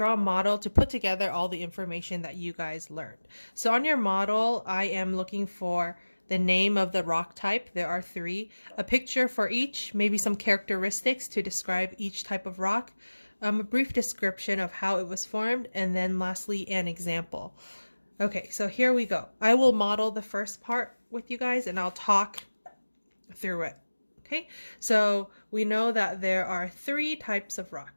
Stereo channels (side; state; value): both; inverted; correlation -1.00